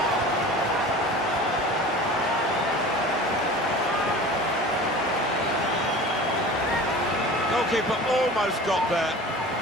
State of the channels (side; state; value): both; normal; correlation 0.39